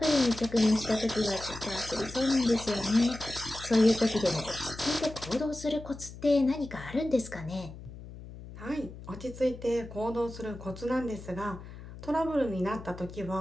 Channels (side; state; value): left; noise; hum, 14 dB below the sound